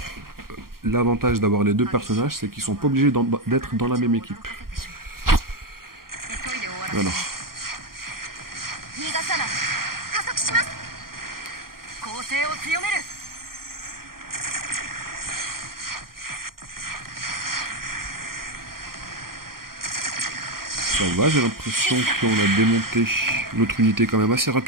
l'avantage d'avoir les deux personnages, c'est qu'ils sont pas obligés d'être dans la même équipe. Voilà. Ça va, j'ai l'impression qu'on a démonté notre unité quand même assez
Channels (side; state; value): left; late; 0.92 ms